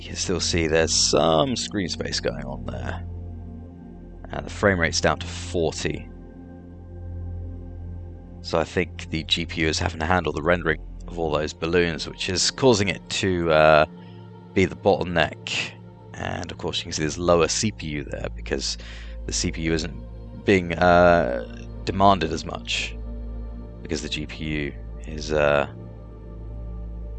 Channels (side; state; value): both; identical; correlation 1.00